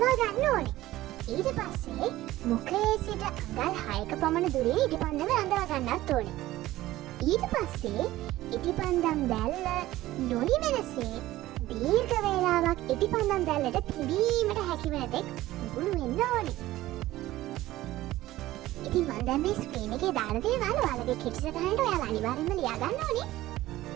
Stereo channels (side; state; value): left; quieter; 16.1 dB